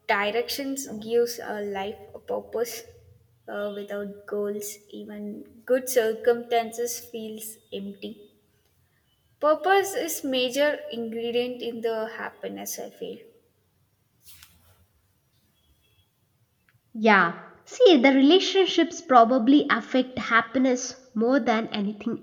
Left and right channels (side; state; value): both; identical; correlation 1.00